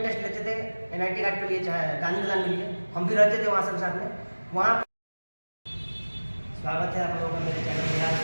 टेस्ट लेते थे NIT घाट पे लिए, चाहे गांधी मैदान में लिए, हम भी रहते थे वहाँ सब साथ में। वहाँ स्वागत है आप लोगों का मेरे चैनल बिहार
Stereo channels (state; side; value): inverted; both; correlation -1.00